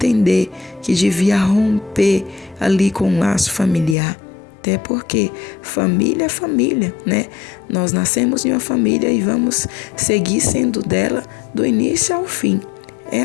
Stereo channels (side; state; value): right; drops out; at 4.0 s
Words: que devia romper ali com o laço familiar. Até porque família é família, né? Nós nascemos em uma família e vamos seguir sendo dela do início ao fim. É